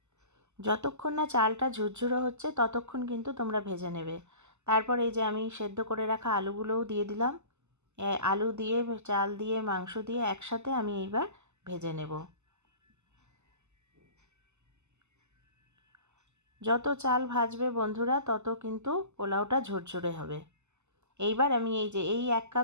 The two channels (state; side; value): late; left; 0.83 ms